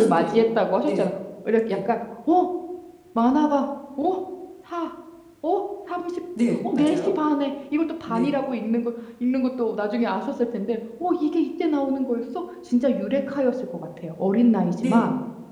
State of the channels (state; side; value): identical; both; correlation 1.00